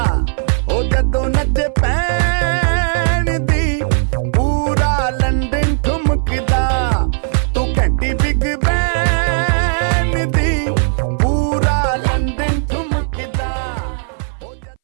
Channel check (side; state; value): left; silent; 63 dB below the other